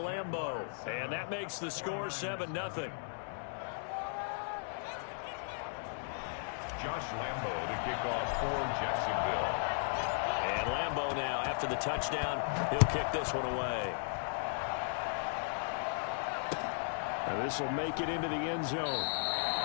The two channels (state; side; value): silent; right; digital silence